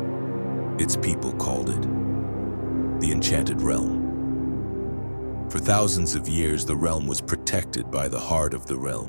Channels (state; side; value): inverted; both; correlation -1.00